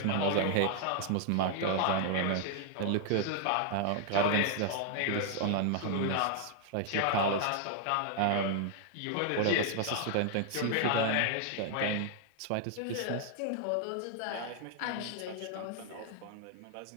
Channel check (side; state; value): both; different; correlation 0.00